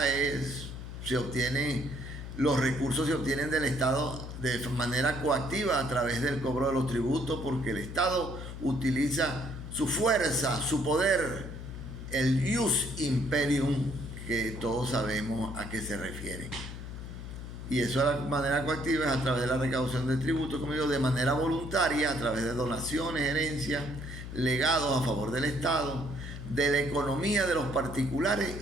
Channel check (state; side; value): noise; left; hum, 9 dB below the sound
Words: los recursos se obtienen del Estado de manera coactiva a través del cobro de los tributos, porque el Estado utiliza su fuerza, su poder, el ius imperium, que todos sabemos a qué se refiere. Y eso de la manera coactiva es a través de la recaudación de tributos, como digo, de manera voluntaria, a través de donaciones, herencias, legados a favor del Estado, de la economía de los particulares